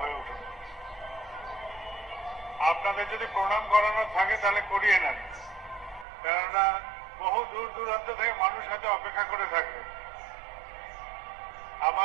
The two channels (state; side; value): drops out; left; at 6.1 s